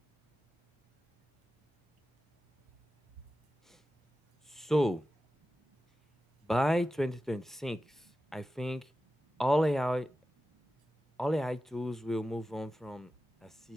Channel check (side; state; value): both; normal; correlation 0.94